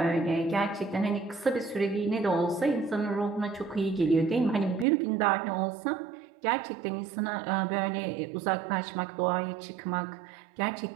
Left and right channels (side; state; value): left; drops out; at 4.9 s